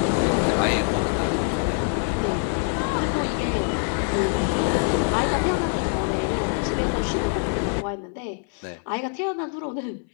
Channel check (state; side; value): silent; right; 57 dB below the other